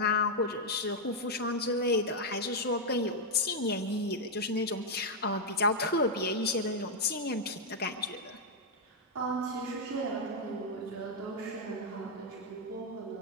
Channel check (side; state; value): both; normal; correlation -0.02